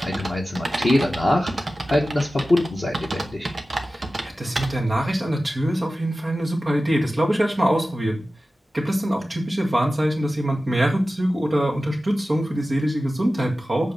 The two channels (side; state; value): both; normal; correlation 0.95